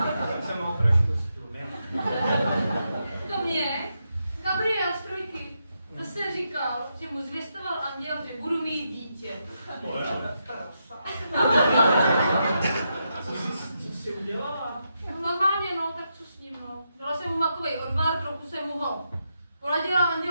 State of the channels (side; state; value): both; inverted; correlation -0.83